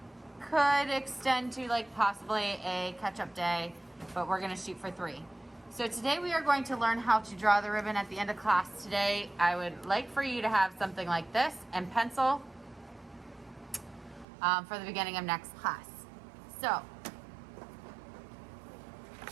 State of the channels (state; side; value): drops out; left; at 14.2 s